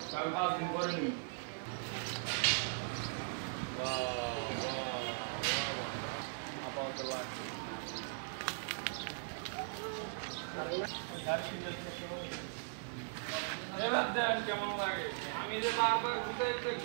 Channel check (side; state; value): left; silent; digital silence